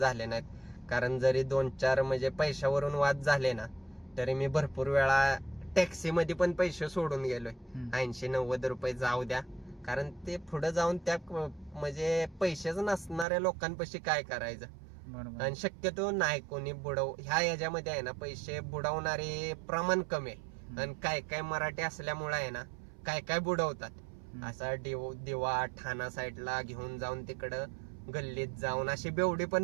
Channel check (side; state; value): left; drops out; at 13.2 s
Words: झाले नाहीत. कारण जरी 2-4 म्हणजे पैशावरून वाद झाले ना, तरी मी भरपूर वेळा टॅक्सी मध्ये पण पैसे सोडून गेलोय. 80-90 रुपये जाऊ द्या, कारण ते पुढे जाऊन त्या म्हणजे पैसेच नसणाऱ्या लोकांपाशी काय करायचं. आणि शक्यतो नाही कोणी ह्या याच्यामध्ये आहे ना, पैसे बुडवणारे प्रमाण कमी आहे. आणि काय काय मराठी असल्यामुळे आहे ना, काय काय बुडवतात. असा दिवा ठाणा साईडला घेऊन जाऊन तिकडं गल्लीत जाऊन अशी बेवडी